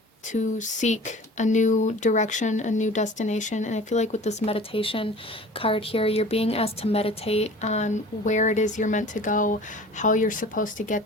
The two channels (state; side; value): normal; both; correlation 0.43